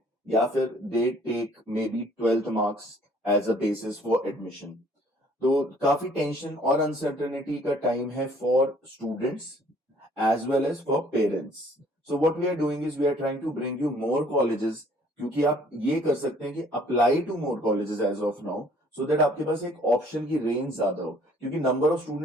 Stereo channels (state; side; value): normal; both; correlation 0.58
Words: या फिर they take maybe 12th marks as a basis for admission. तो काफी टेंशन और अनसर्टेनिटी का टाइम है for students as well as for parents. So what we are doing is we are trying to bring you more colleges, क्योंकि आप ये कर सकते हैं कि apply to more colleges as of now so that आपके पास एक ऑप्शन की रेंज ज्यादा हो, क्योंकि नंबर ऑफ